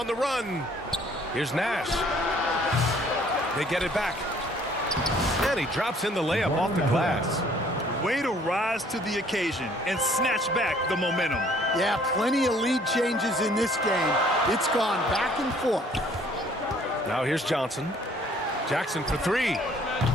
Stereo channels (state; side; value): normal; both; correlation 0.59